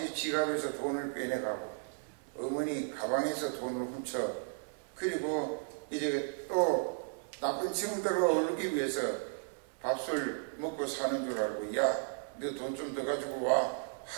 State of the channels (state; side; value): silent; left; 55 dB below the other